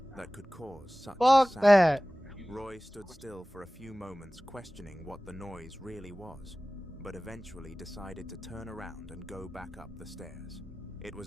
that. could cause such a Fuck sound. that. Roy stood still for a few moments, questioning what the noise really was, but eventually decided to turn around and go back up the stairs. It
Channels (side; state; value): both; normal; correlation 0.98